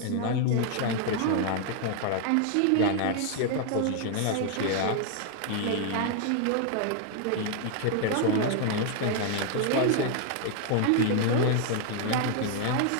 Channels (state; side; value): different; both; correlation 0.00